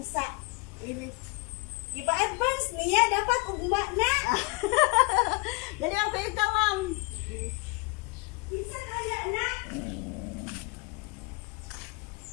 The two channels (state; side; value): quieter; right; 26.5 dB